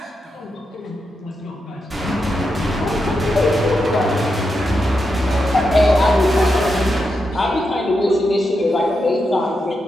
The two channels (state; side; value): normal; both; correlation 0.86